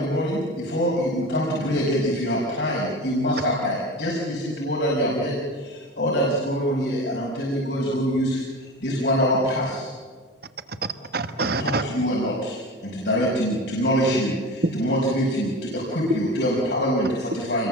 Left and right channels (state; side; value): normal; both; correlation 0.32